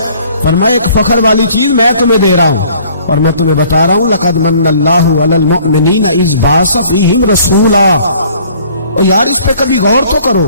فرمایا ایک فخر والی چیز میں تمہیں دے رہا ہوں، اور میں تمہیں بتا رہا ہوں لقد من اللہ علی المؤمنین اذ بعث فیہم رسولا۔ اور یار اس پہ کبھی غور تو کرو،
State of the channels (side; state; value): both; inverted; correlation -0.56